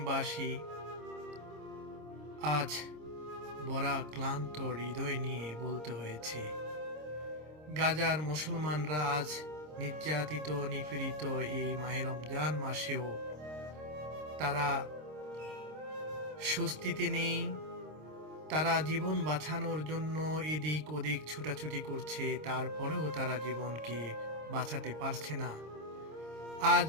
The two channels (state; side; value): late; left; 26 ms